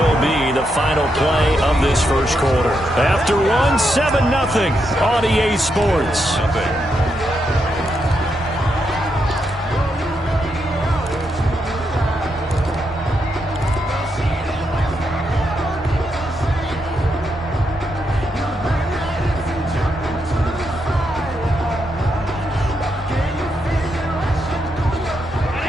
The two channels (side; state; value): both; normal; correlation 0.82